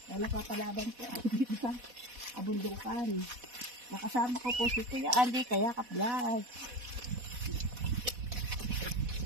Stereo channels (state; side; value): late; left; 4.1 ms